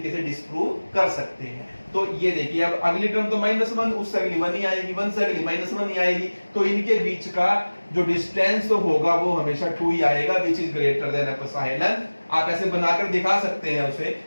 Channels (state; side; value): inverted; both; correlation -1.00